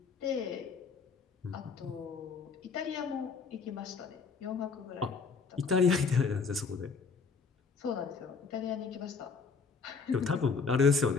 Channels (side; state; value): right; quieter; 5.0 dB